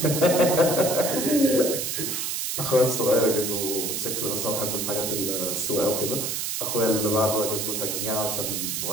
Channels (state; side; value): noise; right; hiss, 2 dB below the sound